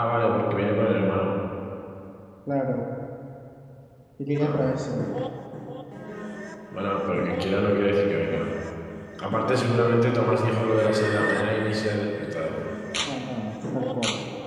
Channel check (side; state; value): both; identical; correlation 1.00